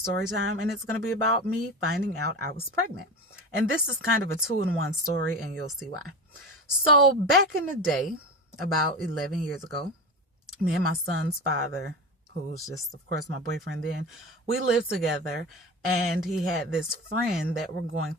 time, and it's going to be about me finding out I was pregnant. And this is kind of a two-in-one story, and you'll see why. So back in the day, about 11 years ago, me and my son's father, who was just, of course, my boyfriend then, we lived together, and he had this friend that we're going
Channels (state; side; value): normal; both; correlation 0.26